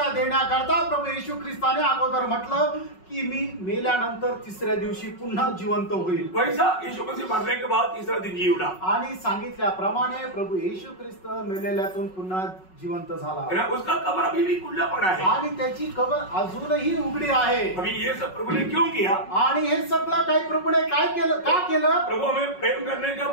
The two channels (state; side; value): late; right; 5.4 ms